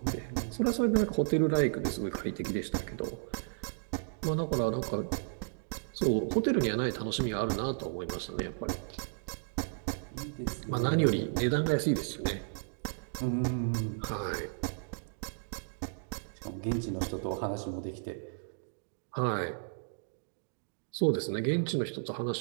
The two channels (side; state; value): left; silent; digital silence